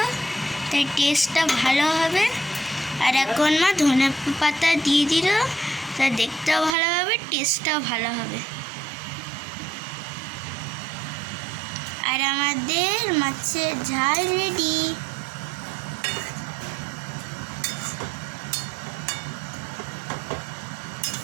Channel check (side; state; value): left; drops out; at 6.8 s